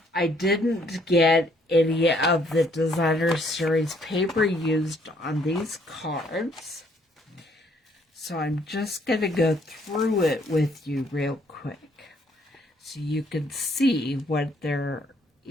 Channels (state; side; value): normal; both; correlation 0.66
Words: I didn't get any of the Designer Series paper used on these cards, so I'm just going to go through it with you real quick so you can see what there